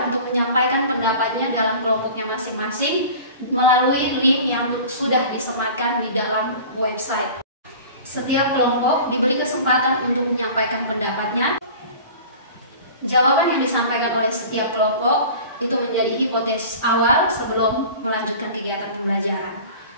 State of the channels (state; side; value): inverted; both; correlation -0.40